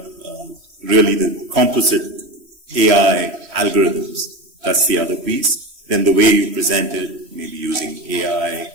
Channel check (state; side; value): late; left; 3.1 ms